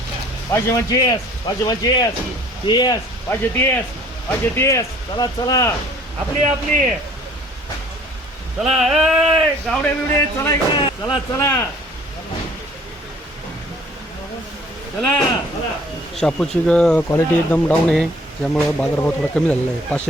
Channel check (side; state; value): both; normal; correlation 0.54